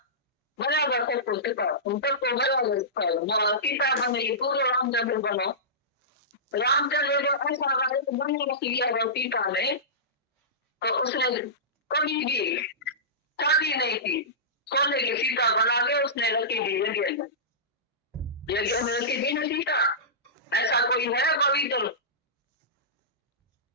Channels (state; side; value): normal; both; correlation -0.19